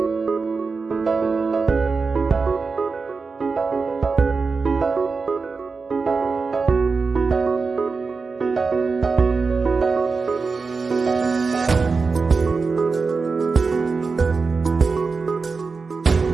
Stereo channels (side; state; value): left; quieter; 4.5 dB